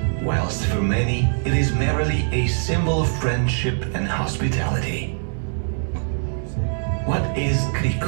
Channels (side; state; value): left; silent; 64 dB below the other